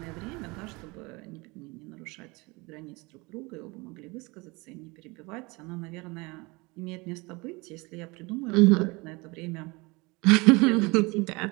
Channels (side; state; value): left; quieter; 25.4 dB